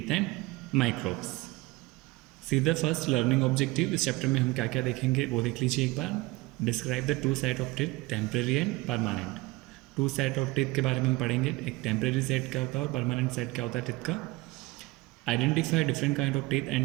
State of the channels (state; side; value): quieter; left; 21.2 dB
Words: and microbes. See the first learning objective. इस chapter में हम क्या क्या देखेंगे वो देख लीजिए एक बार. Describe the two set of teeth, temporary and permanent. Two set of teeth के बारे में हम पढ़ेंगे. एक टेम्परेरी सेट क्या होता है और परमानेंट सेट क्या होता है टीथ का. Identify different kind of teeth